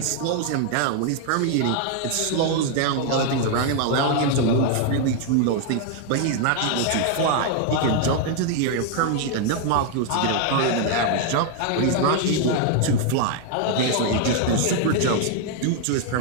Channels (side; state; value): both; different; correlation 0.00